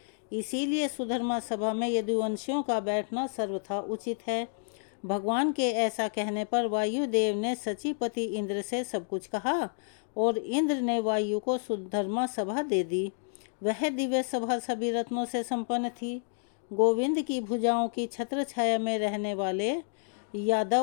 इसीलिए सुधर्मा सभा में यदुवंशियों का बैठना सर्वथा उचित है। भगवान के ऐसा कहने पर वायुदेव ने सचीपति इंद्र से सब कुछ कहा और इंद्र ने वायु को सुधर्मा सभा दे दी। वह दिव्य सभा सभी रत्नों से संपन्न थी। गोविंद की भुजाओं की छत्र छाया में रहने वाले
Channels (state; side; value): silent; right; digital silence